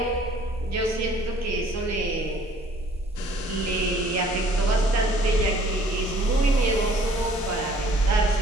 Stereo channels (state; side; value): normal; both; correlation 0.57